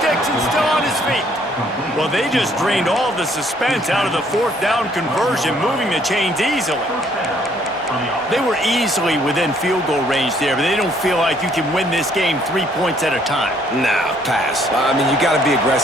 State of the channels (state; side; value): normal; both; correlation 0.65